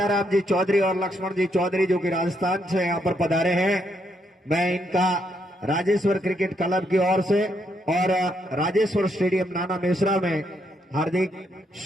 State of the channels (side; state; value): both; normal; correlation 0.76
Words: जी चौधरी और लक्ष्मण जी चौधरी जो कि राजस्थान से यहाँ पर पधारे हैं, मैं इनका राजेश्वर क्रिकेट क्लब की ओर से और राजेश्वर स्टेडियम नाना मेसरा में हार्दिक